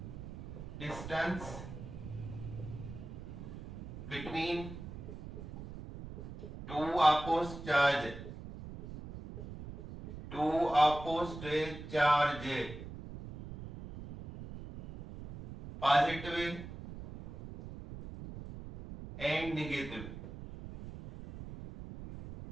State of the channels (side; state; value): right; noise; rumble, 11 dB below the sound